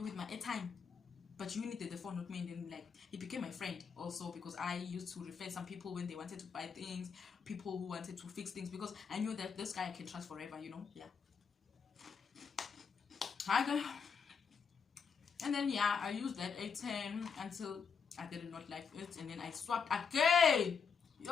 with my airtime, but you needed the phone, not me. And then like he became my friend also, because I used to refer some people when they wanted to buy things, people who wanted to fix things, because I knew that this guy I can trust forever, you know. Yeah. And then yeah, I used that A10 until I did not like it, and then I swapped again.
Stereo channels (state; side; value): quieter; right; 6.1 dB